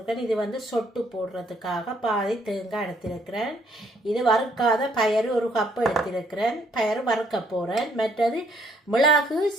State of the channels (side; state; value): both; normal; correlation 0.66